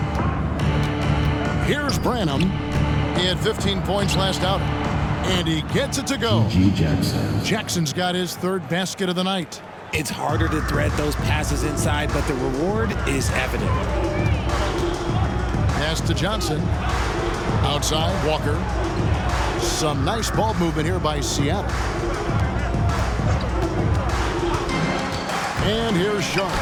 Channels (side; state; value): both; identical; correlation 1.00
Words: Here's Branham. He had 15 points last outing. And he gets it to go. Jackson's got his 3rd basket of the night. It's harder to thread those passes inside, but the reward is evident. Pass to Johnson. Outside, Walker. Some nice ball movement here by Seattle. And here's Sharp.